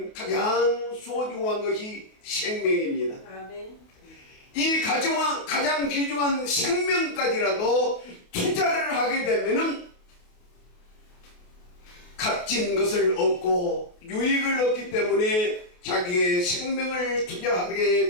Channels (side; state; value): right; late; 28 ms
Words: 가장 소중한 것이 생명입니다. 아멘. 이 가장 귀중한 생명까지라도 투자를 하게 되면은 값진 것을 얻고 유익을 얻기 때문에 자기의 생명을 투자하게